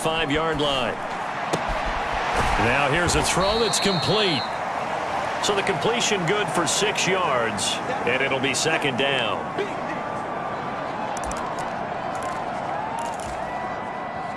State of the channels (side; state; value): both; identical; correlation 1.00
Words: line. Now here's a throw that's complete. So the completion good for 6 yards. And it'll be 2nd down.